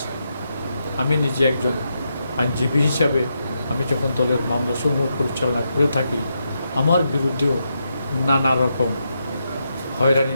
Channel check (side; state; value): both; inverted; correlation -0.83